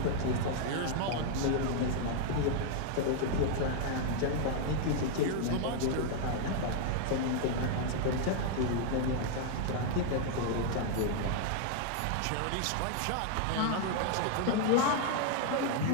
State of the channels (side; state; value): both; different; correlation 0.00